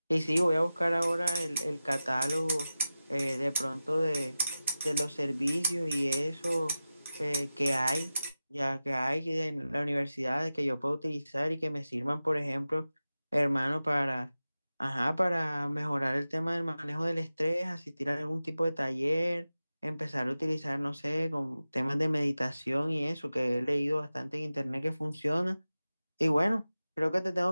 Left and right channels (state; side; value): inverted; both; correlation -0.95